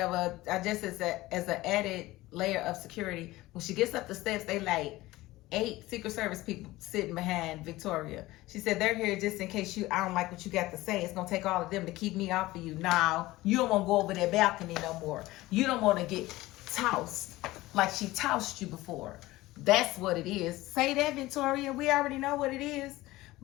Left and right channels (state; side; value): quieter; right; 18.3 dB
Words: I just as an added layer of security. When she gets up the steps, they like 8 Secret Service people sitting behind Victoria. She said, they're here just in case I don't like what you got to say. It's going to take all of them to keep me off of you. Now, you don't want to go over that balcony no more. You don't want to get tossed like she tossed you before. That's what it is. Say that, Victoria. We already know what it is.